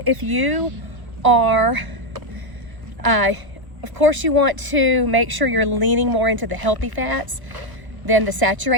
if you are, of course you want to make sure you're leaning more into the healthy fats than the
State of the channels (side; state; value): left; late; 1.2 ms